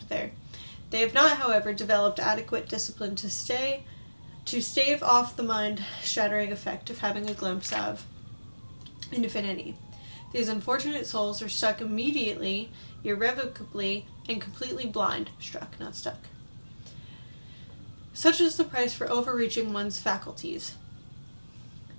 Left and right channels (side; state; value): both; inverted; correlation -1.00